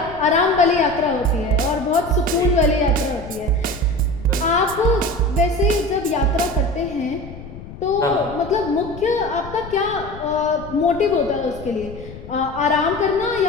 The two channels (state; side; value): noise; left; rumble, 14 dB below the sound